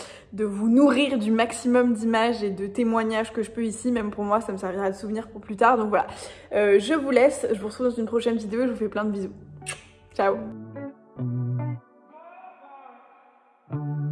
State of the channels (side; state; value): both; identical; correlation 1.00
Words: vous nourrir du maximum d'images et de témoignages que je peux ici. Même pour moi, ça me servira de souvenir pour plus tard. Donc voilà, je vous laisse. Je vous retrouve dans une prochaine vidéo et je vous fais plein de bisous. Ciao.